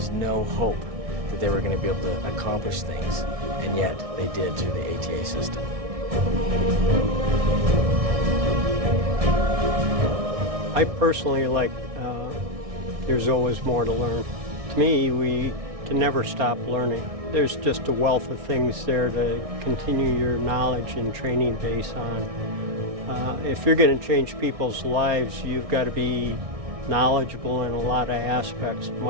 no hope that they were going to be able to accomplish things, and yet they did through the ATA system. I personally like there's always more to learn. To me, we can never stop learning. There's just a wealth of things there to continue your knowledge and training base on. If you're going to change people's lives, you've got to be knowledgeable in a lot of aspects.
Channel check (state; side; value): late; left; 1.6 ms